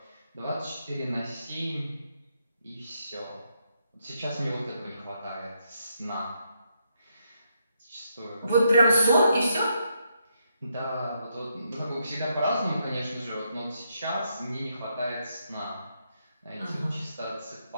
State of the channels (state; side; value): inverted; both; correlation -0.78